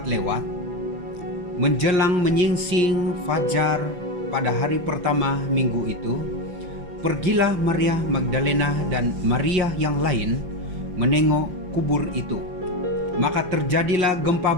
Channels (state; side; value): late; left; 5.8 ms